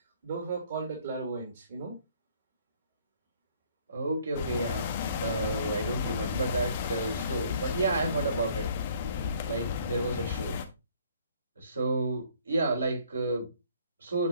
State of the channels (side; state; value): both; inverted; correlation -0.60